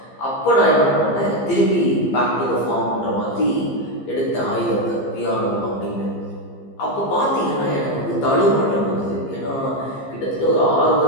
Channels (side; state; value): right; late; 15 ms